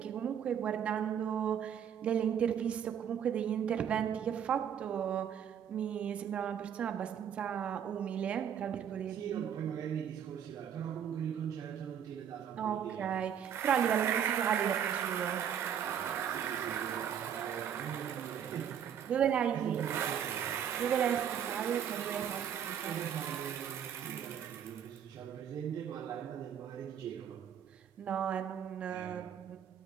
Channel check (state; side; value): quieter; left; 8.7 dB